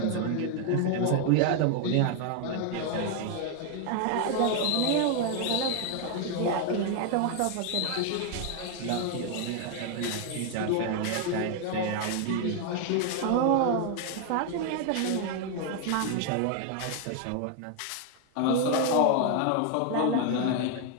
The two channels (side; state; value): both; different; correlation 0.00